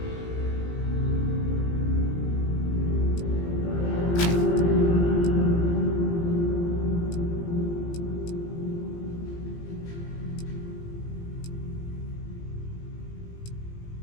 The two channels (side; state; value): right; late; 18 ms